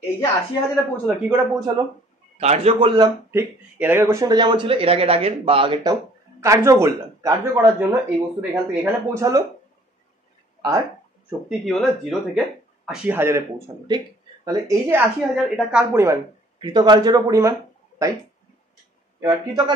এই যে 80,000-এ পৌঁছালো, কি করে পৌঁছালো, কার্য করলাম। ঠিক, এর আগের কোশ্চেনটা যেমন ছিল, এর আগের বা আগেরটাও কার্য করলাম। কার্য করার জন্য এই বস্তুটা এখান থেকে এখানে পৌঁছালো, আর শক্তি কি হলো, 0 থেকে 80,000-এ পৌঁছালো। ঠিক, তাহলে এই যে 80,000 এটা কার পরিমাণ, কৃতকার্যেরও পরিমাণ, তাই? এবার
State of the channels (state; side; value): normal; both; correlation 0.56